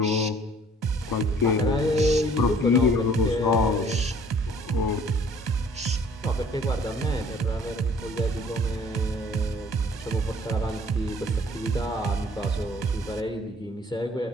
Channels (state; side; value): normal; both; correlation 0.55